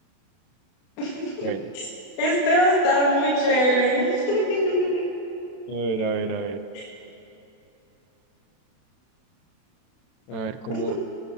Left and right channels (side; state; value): right; late; 32 ms